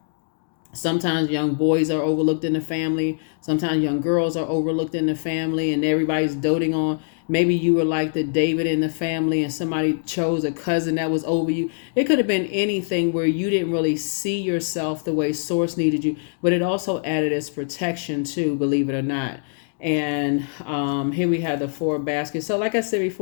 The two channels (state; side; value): silent; right; digital silence